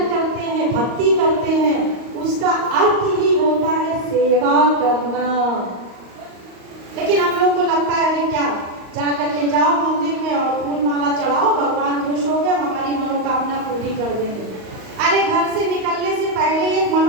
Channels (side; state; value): left; late; 38 ms